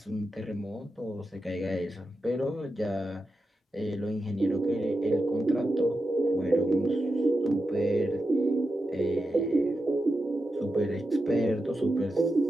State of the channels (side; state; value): both; normal; correlation 0.89